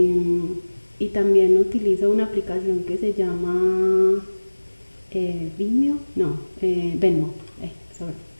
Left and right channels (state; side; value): inverted; both; correlation -1.00